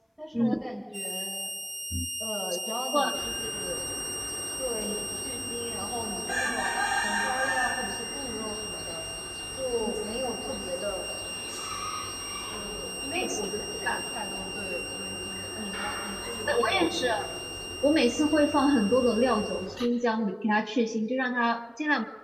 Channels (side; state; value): both; identical; correlation 1.00